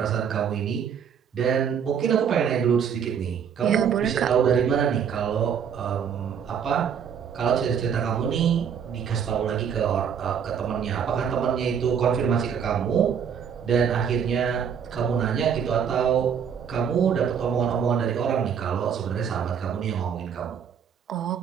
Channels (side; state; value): left; quieter; 7.6 dB